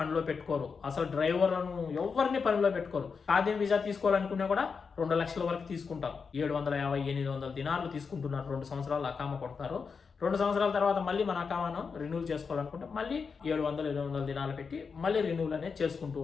పెట్టుకోరు. అసలు డ్రైవర్లను ఎవరిని పనిలో పెట్టుకోరు. ఖాదీ వీసా తీసుకోవాలనుకున్నా కూడా 2 లక్షల వరకు తీసుకుంటారు. 750-800 దినార్లు తీసుకుంటున్నారు. 2 సంవత్సరాలు అకామా కొడతారు. 2 సంవత్సరాల తర్వాత మళ్ళీ మన అకామాను రెన్యూల్ చేసుకోవాలనుకుంటే మళ్ళీ 700-800 దినాలు పెట్టి మళ్ళీ రెన్యూల్ అనేది చేసుకుంటూ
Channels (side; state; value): right; quieter; 5.4 dB